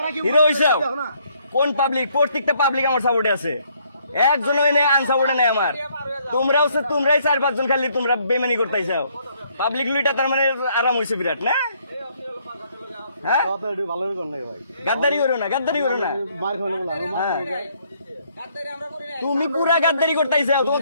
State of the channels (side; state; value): both; inverted; correlation -0.68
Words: হিরো হইছাও। কোন পাবলিক? প্রত্যেকটা পাবলিক আমার সাপোর্টে আছে, একজন এনে আনসাপোর্টে নাই আমার। তোমরাও তোমরাই 4-5 জন খালি তোমরা বেমানি করতেইছাও। পাবলিক লুইটা তার মানে আরাম হইছে বিরাট না। হ্যাঁ গাদ্দারি করো না, গাদ্দারি করো না। মার খাওয়া বলা। হ্যাঁ তুমি পুরা গাদ্দারি করতেইছাও, তোমার